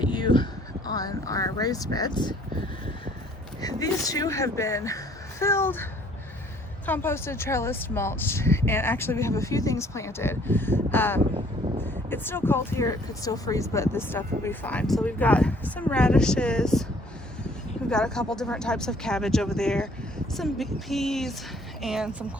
you on our raised beds. These two have been filled, composted, trellised, mulched, and actually we have a few things planted. It's still cold here, it could still freeze, but this stuff will be fine. So we've got some radishes, we've got a couple different types of cabbage over there, some peas, and some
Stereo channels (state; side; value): normal; both; correlation 0.59